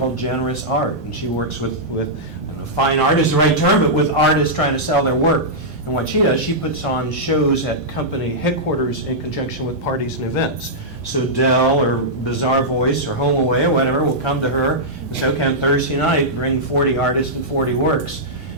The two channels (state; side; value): normal; both; correlation -0.11